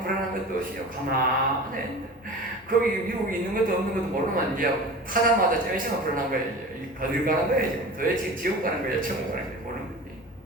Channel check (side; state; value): both; normal; correlation 0.35